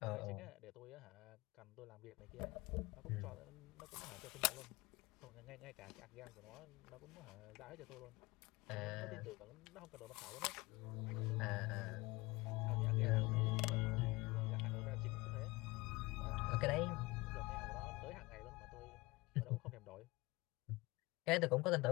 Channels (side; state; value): right; quieter; 22.8 dB